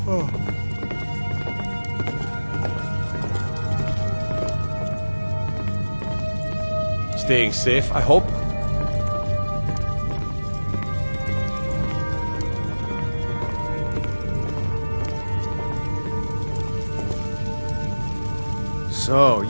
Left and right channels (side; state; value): both; inverted; correlation -1.00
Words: Staying safe, I hope. So,